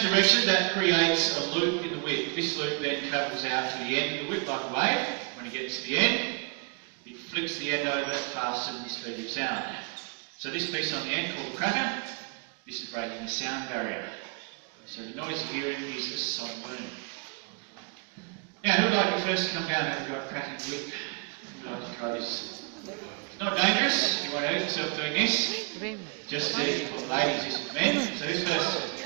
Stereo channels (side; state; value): left; quieter; 35.4 dB